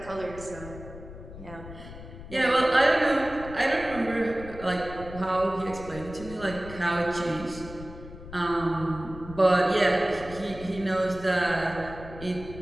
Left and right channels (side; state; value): left; noise; rumble, 14 dB below the sound